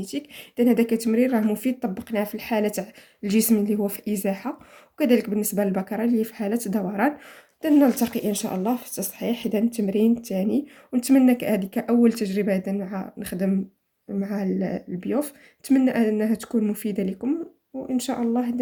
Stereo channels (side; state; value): both; identical; correlation 1.00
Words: إذا هذا كتمرين راه مفيد، طبقناه في الحالة تاع الجسم اللي هو في إزاحة، وكذلك بالنسبة للبكرة اللي هي في حالة دوران. إذا نلتقي إن شاء الله في التصحيح إذا التمرين الثاني، ونتمنى هذه كأول تجربة إذا مع نخدم مع البيوف. نتمنى أنها تكون مفيدة لكم، وإن شاء الله